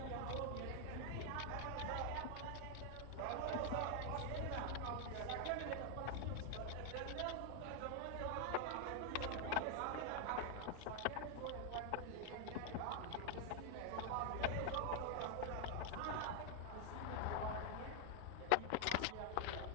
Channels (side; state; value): both; different; correlation 0.00